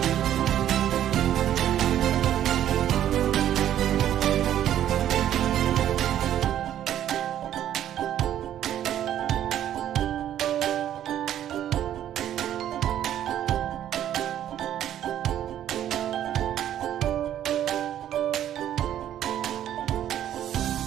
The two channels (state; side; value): quieter; left; 11.2 dB